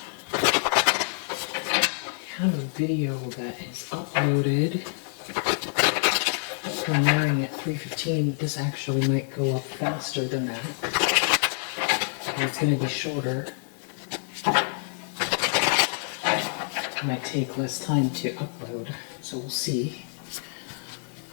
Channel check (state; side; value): silent; right; 60 dB below the other